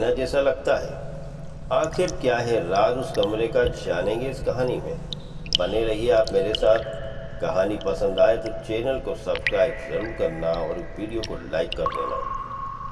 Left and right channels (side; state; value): both; identical; correlation 1.00